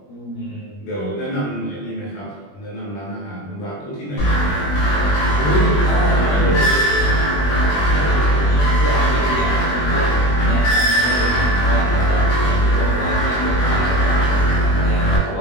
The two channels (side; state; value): right; late; 21 ms